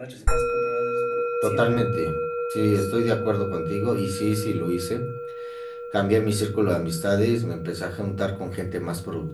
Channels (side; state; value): both; identical; correlation 1.00